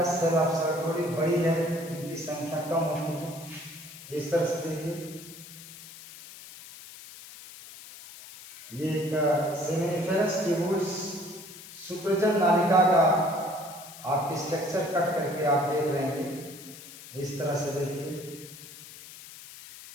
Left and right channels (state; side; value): noise; left; hiss, 16 dB below the sound